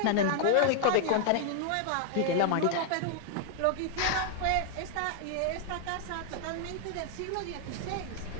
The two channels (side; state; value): both; different; correlation 0.00